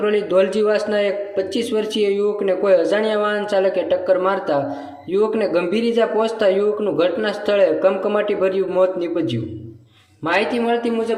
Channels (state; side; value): identical; both; correlation 1.00